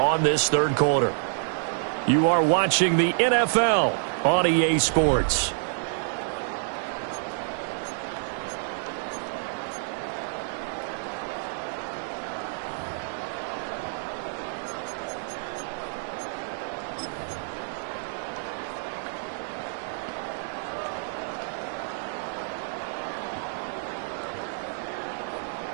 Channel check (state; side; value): silent; left; 59 dB below the other